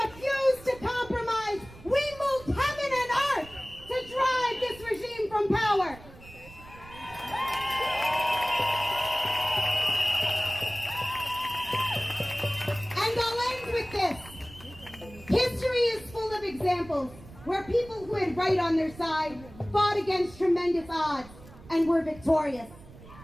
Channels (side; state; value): right; noise; rumble, 19 dB below the sound